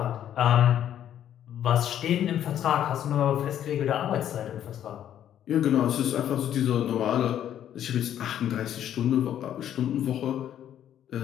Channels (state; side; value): quieter; right; 10.6 dB